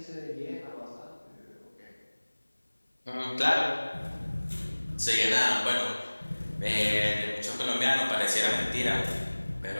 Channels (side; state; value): both; inverted; correlation -1.00